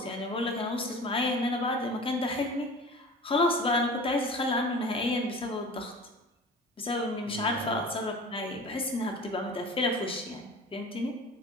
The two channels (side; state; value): both; normal; correlation 0.39